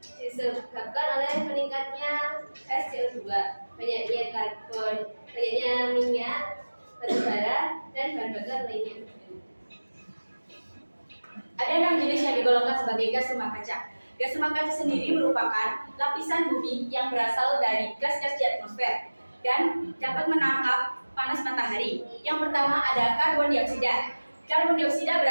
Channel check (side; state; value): both; inverted; correlation -1.00